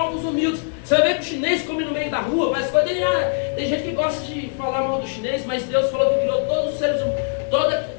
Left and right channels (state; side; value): silent; right; digital silence